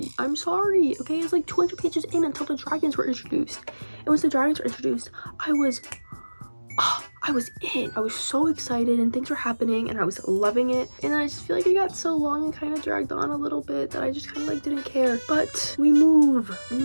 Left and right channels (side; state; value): both; inverted; correlation -1.00